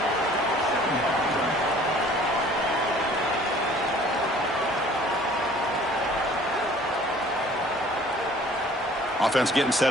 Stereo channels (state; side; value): normal; both; correlation 0.52